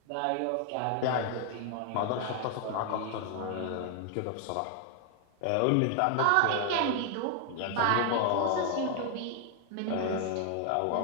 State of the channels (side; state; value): both; different; correlation 0.00